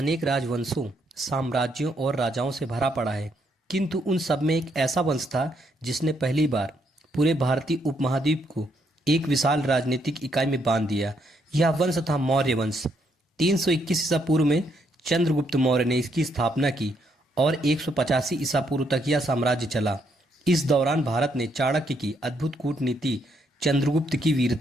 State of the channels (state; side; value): normal; both; correlation 0.74